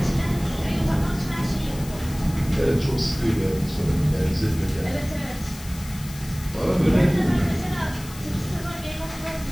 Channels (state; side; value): noise; left; hiss, 16 dB below the sound